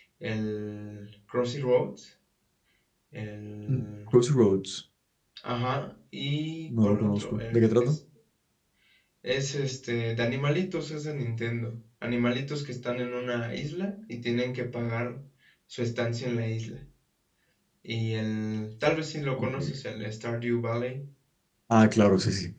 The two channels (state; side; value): identical; both; correlation 1.00